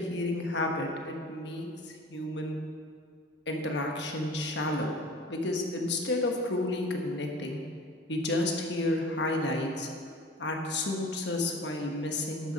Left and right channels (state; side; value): normal; both; correlation 0.42